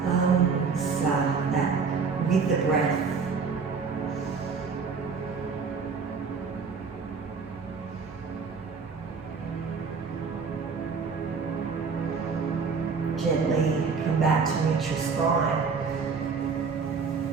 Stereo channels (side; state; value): left; quieter; 5.3 dB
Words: Sa, that with the breath. Gently come back to neutral spine.